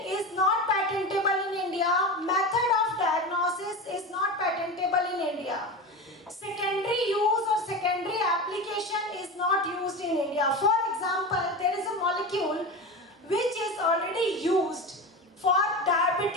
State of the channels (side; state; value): both; normal; correlation 0.25